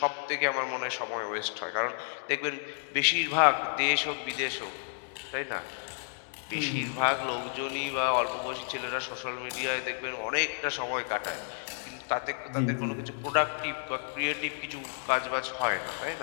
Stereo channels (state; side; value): silent; right; digital silence